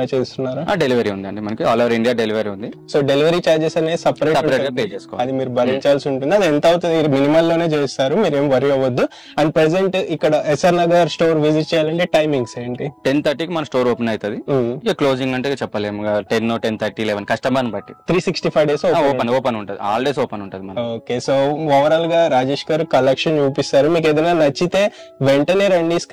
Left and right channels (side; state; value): both; identical; correlation 1.00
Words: చేస్తున్నారా? డెలివరీ ఉంది అండి, మనకి ఆల్ ఓవర్ ఇండియా డెలివరీ ఉంది. సో డెలివరీ చార్జెస్ అనేది సపరేట్ పే చేసుకోవాలి, అది మీరు భరించాల్సి ఉంటుంది. అది ఎంత అవుతుంది? మినిమల్ లోనే చేస్తారు, మీరు ఏం వరి అవ్వద్దు. అండ్ ప్రెసెంట్ ఇక్కడ ఎస్ఆర్ నగర్ స్టోర్ విజిట్ చేయాలంటే టైమింగ్స్ ఏంటి? 10:30కి మన స్టోర్ ఓపెన్ అవుతుంది. ఇక క్లోజింగ్ అంటే చెప్పలేము, 10, 10:30, 11 కస్టమర్ బట్టి 365 days ఓపెన్ ఉంటుంది. ఆల్ డేస్ ఓపెన్ ఉంటుంది. ఓకే. సో ఓవరాల్ గా రాజేష్ గారు కలెక్షన్ చూపిస్తారు. మీకు ఏదైనా నచ్చితే వెంటనే రండి,